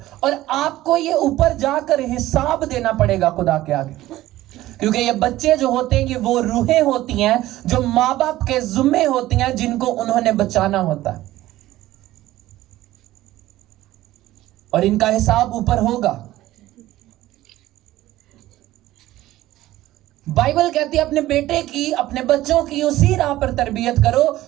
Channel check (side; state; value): left; quieter; 15.6 dB